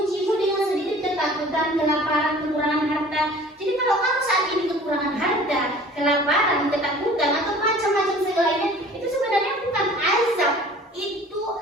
dengan sedikit ketakutan, kelaparan, kekurangan harta. Jadi kalau kamu saat ini kekurangan harta, kelaparan, ketakutan atau macam-macam segalanya, itu sebenarnya bukan azab. Itu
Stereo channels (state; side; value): normal; both; correlation 0.47